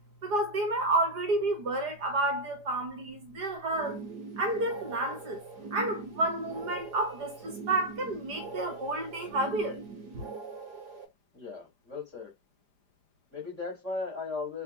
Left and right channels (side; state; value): left; late; 4.9 ms